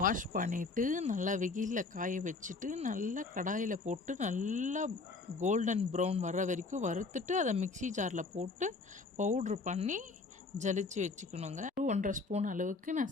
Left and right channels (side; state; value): right; quieter; 3.9 dB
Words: வாஷ் பண்ணிவிட்டு நல்லா வெயிலில் காய வச்சுட்டு நல்லா கடாயில் போட்டு நல்லா கோல்டன் ப்ரௌன் வர்ற வரைக்கும் வறுத்துட்டு அதை மிக்ஸி ஜாரில் போட்டு பவுட்ரு பண்ணி ஜலிச்சு வச்சுக்கணுங்க. 1.5 ஸ்பூன் அளவுக்கு